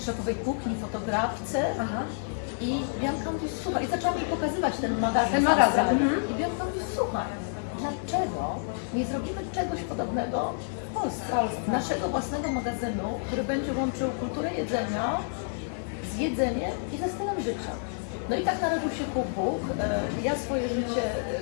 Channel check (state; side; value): silent; right; 58 dB below the other